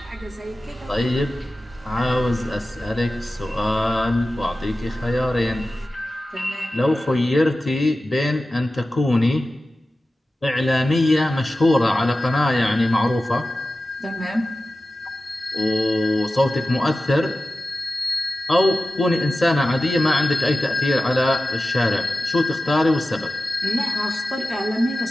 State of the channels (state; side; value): normal; both; correlation 0.94